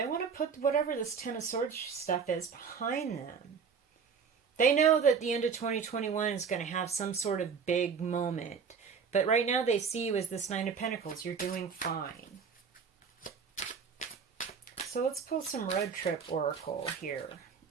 want to put whatever this Ten of Swords stuff is behind them. They know that the end of 2021 is going to have some sort of big moment, but right now they see you as this Nine of Pentacles. You're doing fine. So let's pull some road trip oracle here.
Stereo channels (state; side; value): quieter; left; 6.1 dB